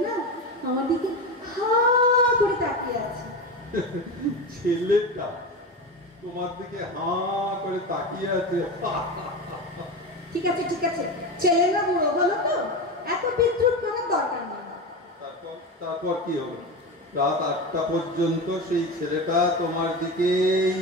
না আমার দিকে হা করে তাকিয়ে আছে। ছেলেটা তোমার দিকে হা করে তাকিয়ে আছে? ঠিক আছে ঠিক আছে, ছেলে না বুড়ো হলো তো, এত বিদ্রুপ করার দরকার নেই। তারপর কি হলো? রাত 8টা পর্যন্ত সেই ছেলেটা তোমার দিকেই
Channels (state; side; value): normal; both; correlation 0.22